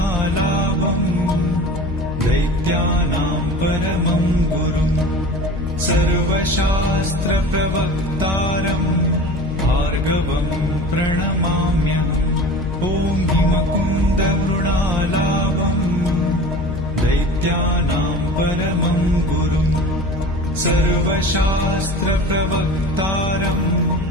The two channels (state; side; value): noise; left; hum, 7 dB below the sound